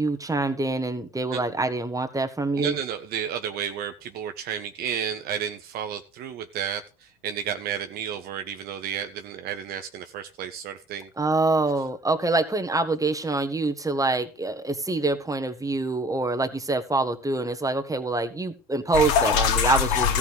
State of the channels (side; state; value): both; normal; correlation 0.46